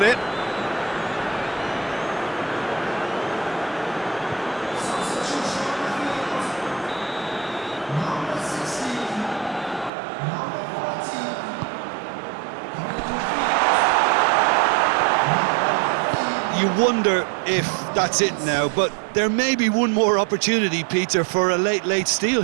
it. You wonder if that's it now, but there may be one more opportunity, Peter, for a late steal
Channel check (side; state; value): left; drops out; at 9.9 s